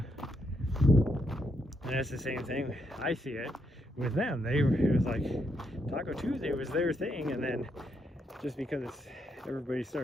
And it's the same thing. I see it with them. It was like Taco Tuesday was their thing, and then just because everybody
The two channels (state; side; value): normal; both; correlation 0.78